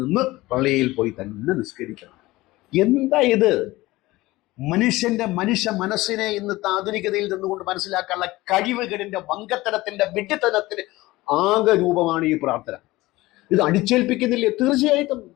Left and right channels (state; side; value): quieter; right; 19.1 dB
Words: പള്ളിയിൽ പോയി തന്നെ നിസ്കരിക്കണം. എന്താ ഇത്? മനുഷ്യ മനസ്സിനെ ഇന്ന് ആധുനികതയിൽ നിന്നുകൊണ്ട് മനസ്സിലാക്കാനുള്ള കഴിവുകളിന്റെ വങ്കത്തരത്തിന്റെ വിഡ്ഢിത്തനത്തിന് ആകെ രൂപമാണ് ഈ പ്രാർത്ഥന. ഇത് അടിച്ചേൽപ്പിക്കുന്നില്ലേ? തീർച്ചയായിട്ടും.